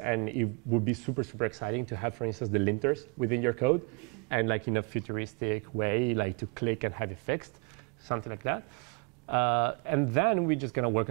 it would be super, super exciting to have, for instance, the linters within your code, and like in a futuristic way, like to click and have it fixed, something like that. And then we're just going to work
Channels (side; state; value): left; quieter; 31.9 dB